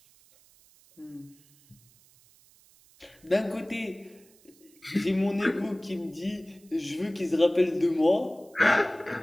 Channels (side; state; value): right; noise; hiss, 29 dB below the sound